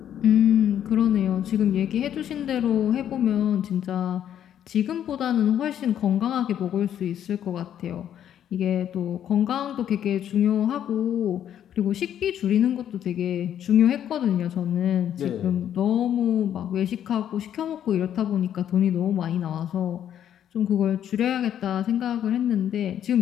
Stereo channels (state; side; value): quieter; right; 10.1 dB